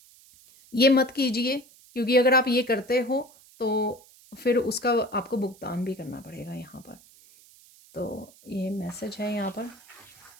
ये मत कीजिए, क्योंकि अगर आप ये करते हो तो फिर उसका आपको भुगतान भी करना पड़ेगा यहाँ पर। तो ये मैसेज है यहाँ पर।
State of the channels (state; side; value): noise; right; hiss, 25 dB below the sound